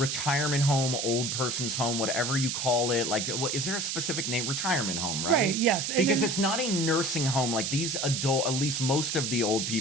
home, old person's home, whatever you call it. Like, is there a specific name? Retirement home, right? Right, yes. Because it's not a nursing home. Like these at least most of the old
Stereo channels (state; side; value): noise; right; hiss, 1 dB below the sound